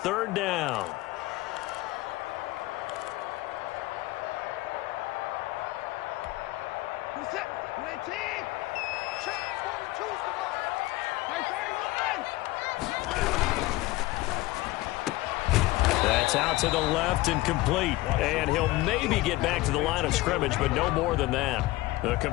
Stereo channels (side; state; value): right; quieter; 19.1 dB